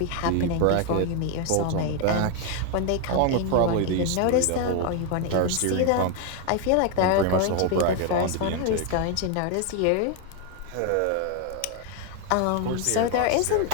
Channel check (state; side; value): different; both; correlation 0.01